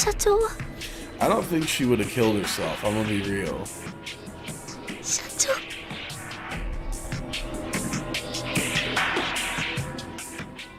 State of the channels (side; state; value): both; identical; correlation 1.00